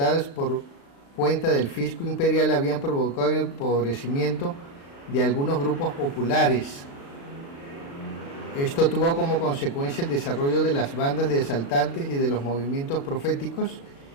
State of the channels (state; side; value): late; right; 36 ms